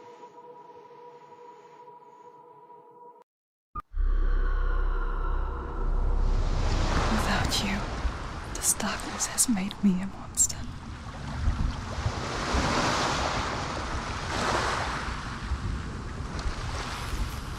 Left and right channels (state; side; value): identical; both; correlation 1.00